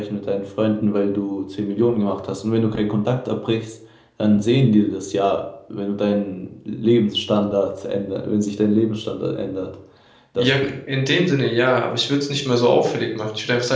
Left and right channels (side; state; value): both; identical; correlation 1.00